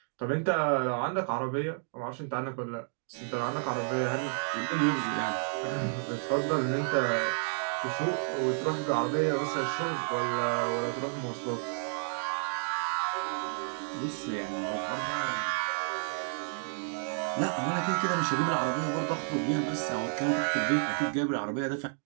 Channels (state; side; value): silent; left; 57 dB below the other